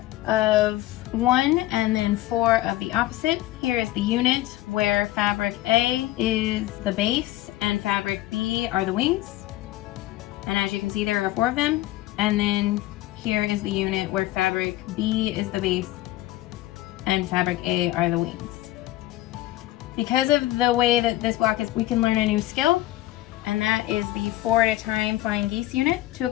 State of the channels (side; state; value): right; quieter; 16.1 dB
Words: of one and then 4 of the opposite. Here is the unit where fabric A is the base and fabric B are the wings. And as you can see, there are 4 of them. And then here is the unit where fabric B is the base and fabric A are the wings. Because of the way that this block is, we can learn a new skill, and that is the 4 at a time flying geese unit. To